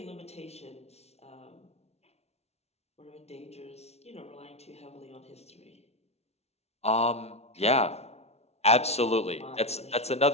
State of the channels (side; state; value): right; late; 0.31 ms